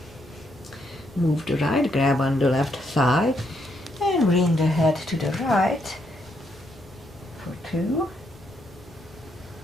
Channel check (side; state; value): both; normal; correlation 0.76